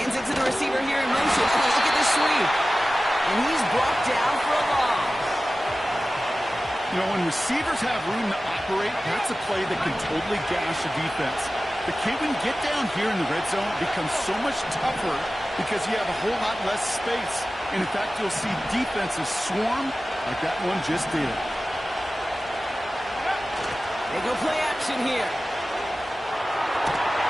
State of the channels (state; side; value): normal; both; correlation 0.96